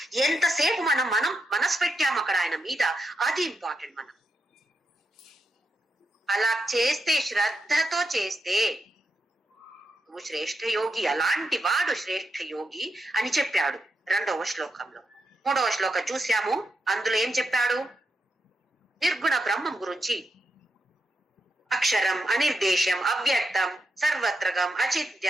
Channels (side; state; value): both; normal; correlation 0.85